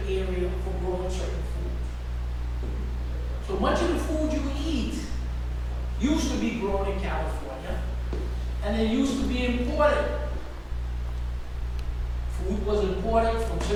area for growing certain foods. So much of the food you eat used to be grown in California, and it used to be imported. Food was imported from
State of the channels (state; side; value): identical; both; correlation 1.00